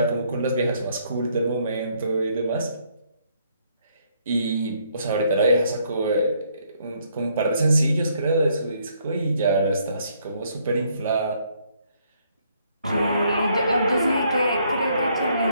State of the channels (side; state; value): both; inverted; correlation -0.69